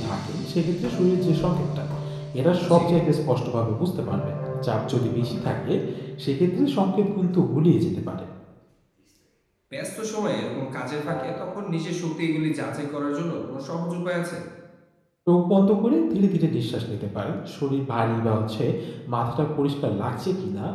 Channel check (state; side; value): identical; both; correlation 1.00